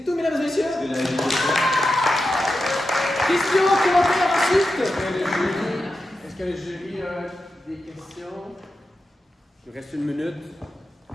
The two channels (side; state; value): both; normal; correlation 0.90